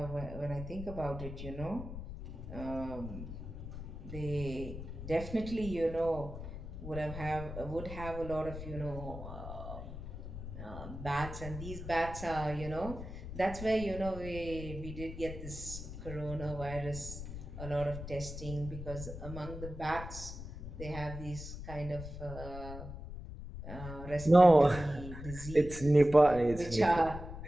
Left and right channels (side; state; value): left; noise; rumble, 9 dB below the sound